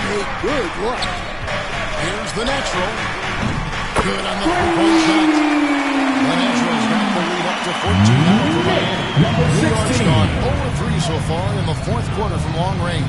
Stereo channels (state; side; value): identical; both; correlation 1.00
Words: good look. Here's the Natural. Good on the 3-point shot. The Natural's got the lead up to 14 now for Miami. New York's gone 0-3 so far in the 4th quarter from long range.